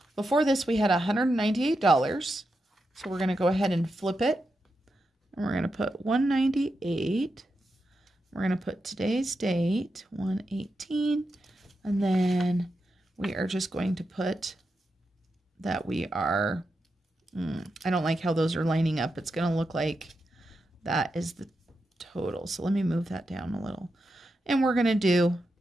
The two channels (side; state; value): both; normal; correlation 0.87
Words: before this we had $198. So we're going to go ahead and flip it. And we're going to put 198. We're going to put today's date, 118. And then we are just going to put that we are, I don't like how those are lining up. It's going to look like that is the total. So let me move that down a little. And we're going to do